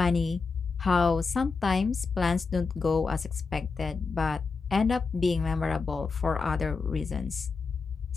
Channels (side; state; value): right; quieter; 4.6 dB